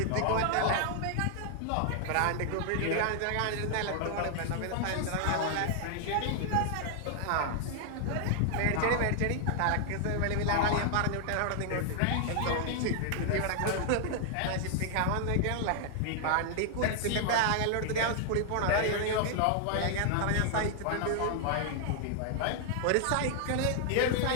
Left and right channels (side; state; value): both; different; correlation 0.00